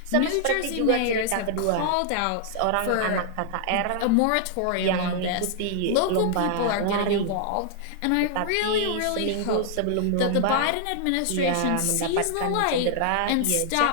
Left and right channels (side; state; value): both; different; correlation 0.00